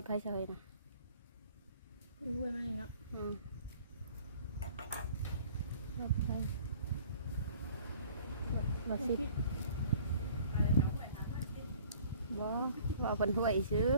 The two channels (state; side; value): inverted; both; correlation -0.52